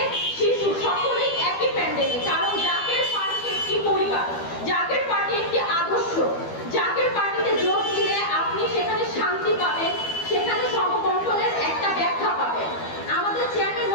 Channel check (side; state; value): right; late; 12 ms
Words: শিশু সকলেই একই প্যান্ডেলে। কারণ জাকের পার্টি একটি পরিবার, জাকের পার্টি একটি আদর্শ। জাকের পার্টিতে যোগ দিলে আপনি সেখানে শান্তি পাবেন, সেখানে সমবন্টনের একটা ব্যাখ্যা পাবেন। আমাদের চেয়ারম্যান